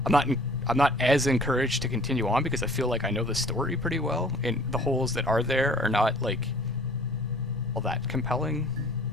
I'm not as encouraged to continue on because I feel like I know the story pretty well, and the holes that are there are not like all that compelling.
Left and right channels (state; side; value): normal; both; correlation 0.51